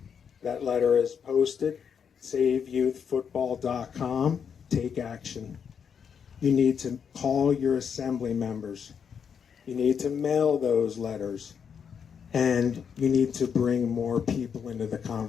That letter is posted, saveyouthfootball.com. Take action. You need to call your assembly members. You need to mail those letters. And you need to bring more people into the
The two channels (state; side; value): quieter; right; 7.2 dB